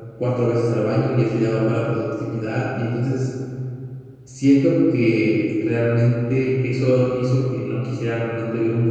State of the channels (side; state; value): both; identical; correlation 1.00